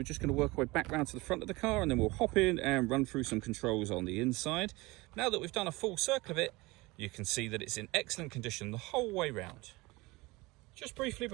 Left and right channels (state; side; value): quieter; left; 22.5 dB